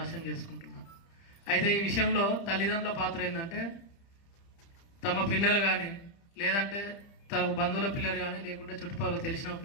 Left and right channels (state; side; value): late; right; 30 ms